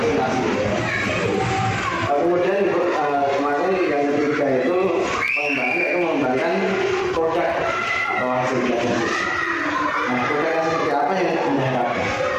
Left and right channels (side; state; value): both; identical; correlation 1.00